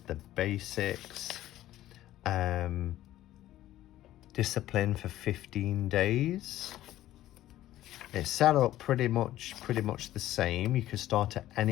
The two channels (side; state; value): right; quieter; 14.1 dB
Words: basics. Discipline for 15 days. It's set up pretty much the same. You can start at